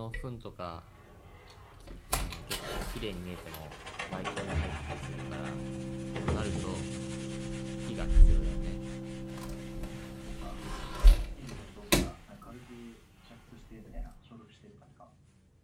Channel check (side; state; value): both; identical; correlation 1.00